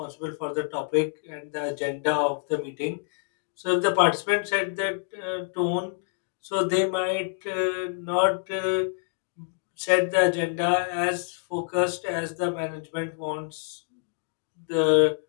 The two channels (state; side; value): silent; right; digital silence